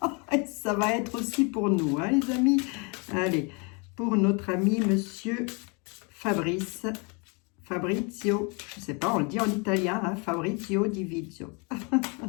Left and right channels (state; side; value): quieter; right; 32.4 dB